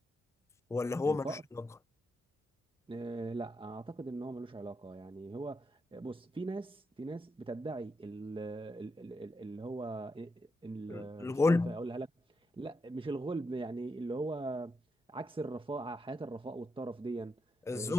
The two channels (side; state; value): both; normal; correlation 0.84